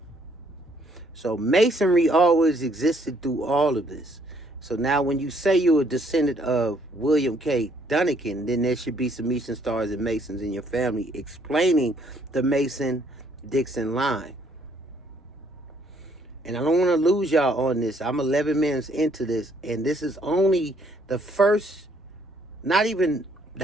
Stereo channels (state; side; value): normal; both; correlation 0.66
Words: So Masonry always existed through all of this. So now when you say you're a descendant of William K. Donnegen, then there should be some Eastern Stars and Masons in your family, explaining the Mason-Dixon line. And I don't want to lose y'all on this. I'm 11 minutes into this, and this is only the first, not even